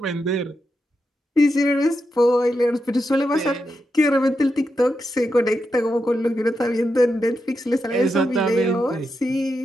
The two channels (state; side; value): normal; both; correlation 0.86